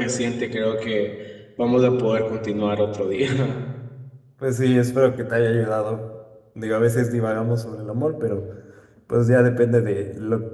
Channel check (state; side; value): identical; both; correlation 1.00